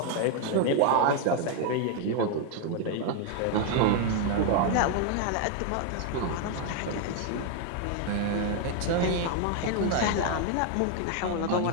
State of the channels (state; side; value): different; both; correlation 0.00